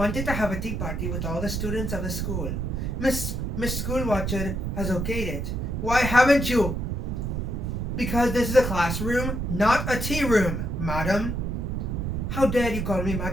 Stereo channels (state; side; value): noise; right; rumble, 2 dB below the sound